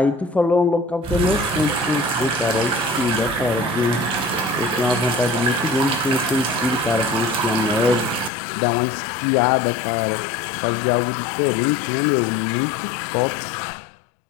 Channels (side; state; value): right; drops out; at 8.3 s